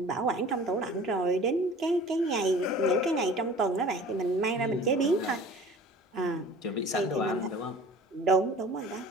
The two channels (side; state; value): both; normal; correlation 0.44